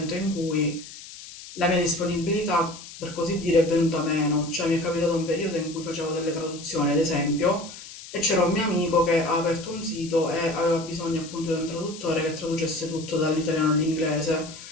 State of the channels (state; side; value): noise; left; hiss, 15 dB below the sound